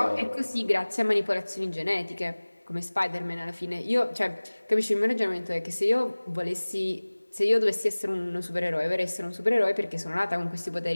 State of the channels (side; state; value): both; inverted; correlation -1.00